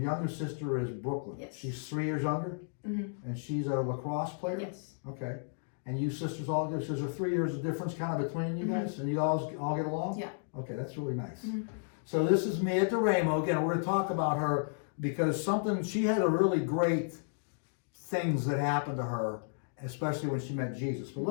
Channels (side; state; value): right; silent; digital silence